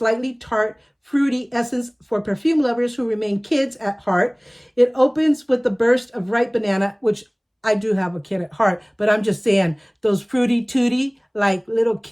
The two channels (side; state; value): both; identical; correlation 1.00